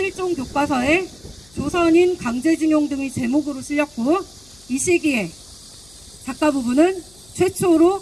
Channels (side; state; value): left; noise; hum, 27 dB below the sound